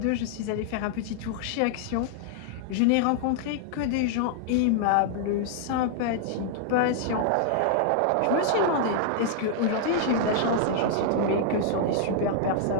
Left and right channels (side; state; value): both; different; correlation -0.01